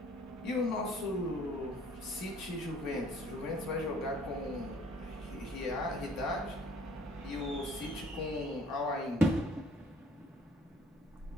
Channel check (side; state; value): both; normal; correlation 0.56